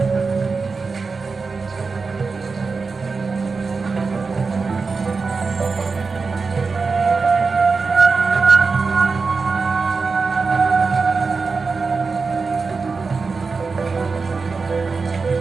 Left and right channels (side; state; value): left; quieter; 4.5 dB